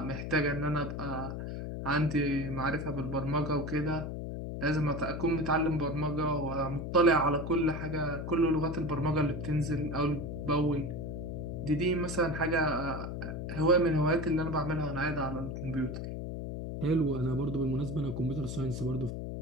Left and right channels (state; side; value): noise; left; hum, 5 dB below the sound